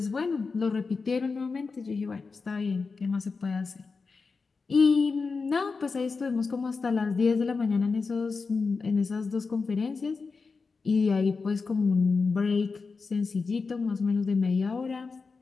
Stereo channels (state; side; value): quieter; right; 4.5 dB